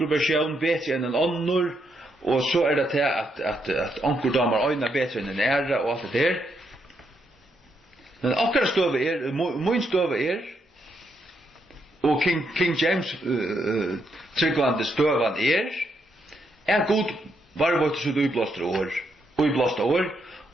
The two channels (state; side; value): normal; both; correlation 0.78